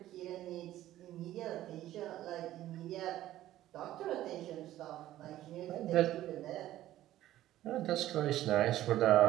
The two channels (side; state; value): left; quieter; 14.0 dB